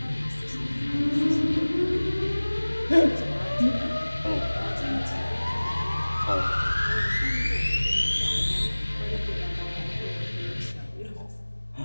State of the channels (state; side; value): inverted; both; correlation -1.00